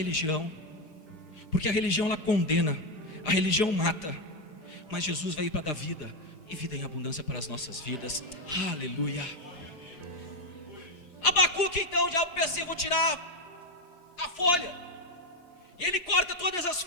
porque a religião ela condena, a religião mata, mas Jesus veio para dar vida, e vida em abundância para as nossas vidas. Aleluia. Abacuque, então, o diabo pensa: eu vou tirar a folha, e ele corta todas as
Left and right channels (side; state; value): right; late; 4.9 ms